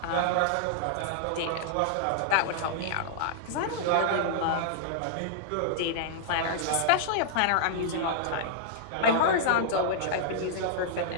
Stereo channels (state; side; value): different; both; correlation -0.01